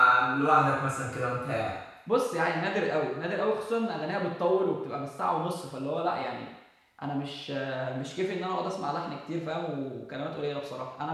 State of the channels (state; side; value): identical; both; correlation 1.00